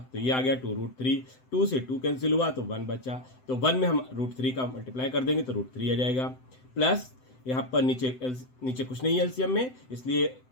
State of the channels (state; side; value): late; right; 7.9 ms